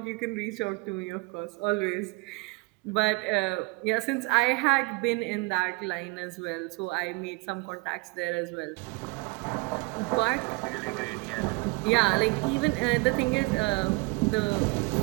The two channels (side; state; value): left; quieter; 27.0 dB